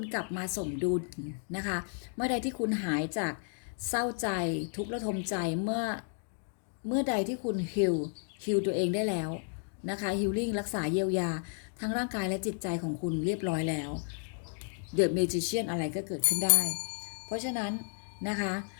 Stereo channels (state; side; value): silent; right; 56 dB below the other